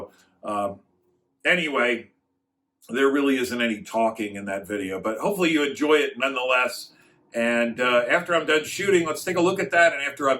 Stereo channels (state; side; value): identical; both; correlation 1.00